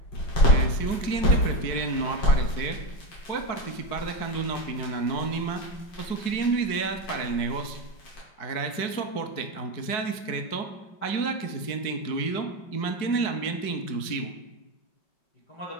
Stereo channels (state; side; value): late; right; 4.7 ms